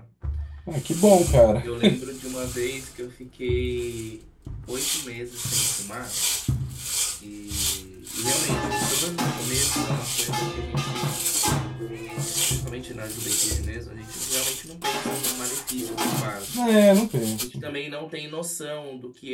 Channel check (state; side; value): identical; both; correlation 1.00